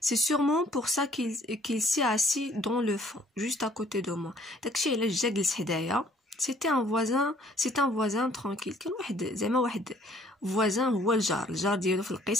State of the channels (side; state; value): both; normal; correlation 0.59